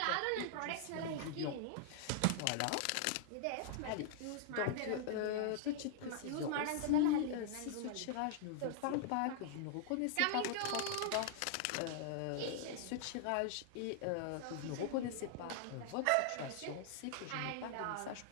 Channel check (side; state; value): both; different; correlation -0.01